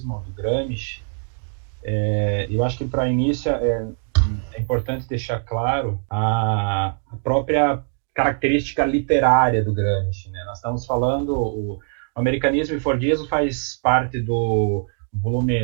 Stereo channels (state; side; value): silent; left; 58 dB below the other